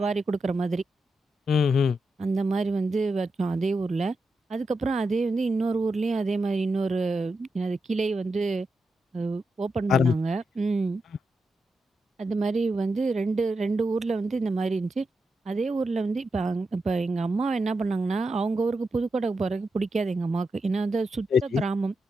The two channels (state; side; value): normal; both; correlation 0.87